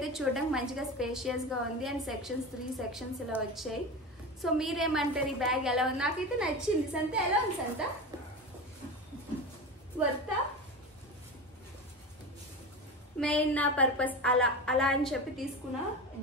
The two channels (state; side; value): normal; both; correlation 0.26